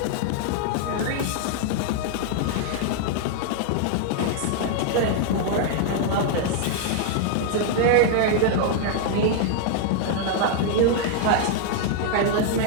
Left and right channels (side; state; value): both; different; correlation 0.00